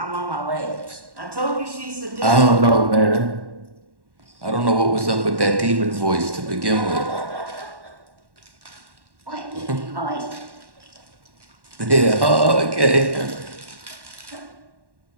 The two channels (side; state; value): left; late; 1.1 ms